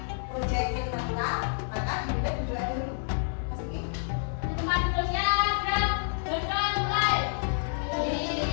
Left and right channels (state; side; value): silent; right; 59 dB below the other